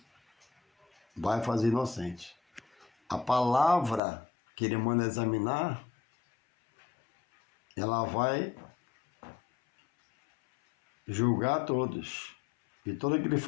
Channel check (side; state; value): right; drops out; at 4.0 s